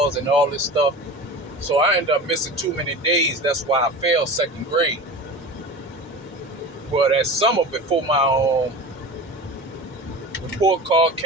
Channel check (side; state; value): both; normal; correlation 0.33